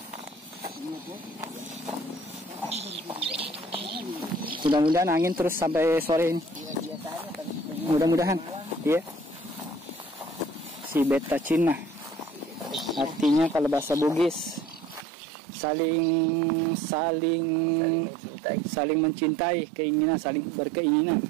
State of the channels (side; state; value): left; drops out; at 15.1 s